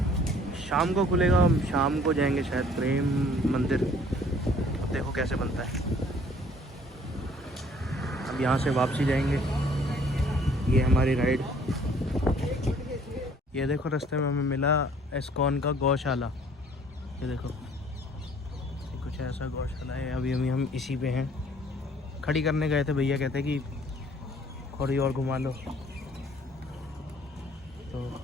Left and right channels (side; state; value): both; normal; correlation 0.57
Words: शाम को खुलेगा, हम शाम को जाएंगे शायद प्रेम मंदिर। अब देखो कैसे बनता है। अब यहाँ से वापसी जाएंगे। ये हमारी राइड। ये देखो रास्ते में हमें मिला इस्कॉन का गौशाला। ये देखो ये कुछ ऐसा गौशाला है। अभी हम इसी पे हैं, खड़ी करने गए थे। भैया कहते कि थोड़ी और घुमा लो, तो